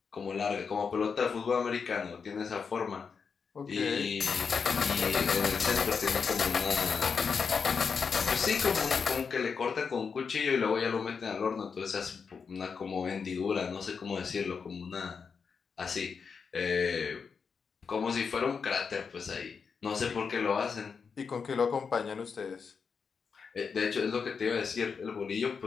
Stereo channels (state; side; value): quieter; right; 5.8 dB